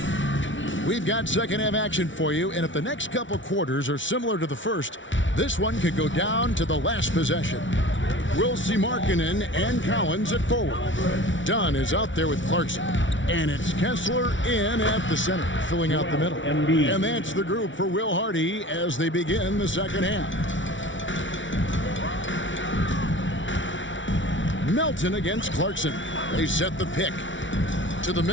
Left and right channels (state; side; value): late; right; 0.56 ms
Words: We've got second half action for you, and if the next couple quarters are similar to the first, this one could go down to the last possession. We'll see Markkanen and Collins at forward. Dunn is out there with Clarkson. And it's Kessler in at the center, filling out the middle. And that's the group for Will Hardy as they begin the second half. Melton against Clarkson. They set the pick. To the